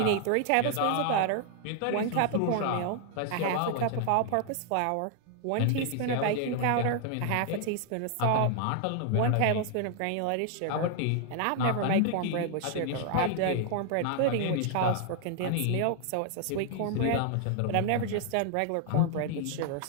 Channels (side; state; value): both; different; correlation 0.00